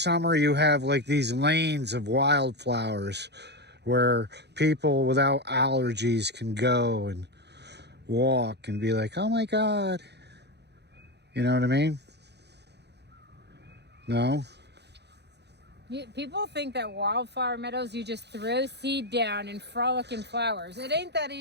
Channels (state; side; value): late; left; 0.49 ms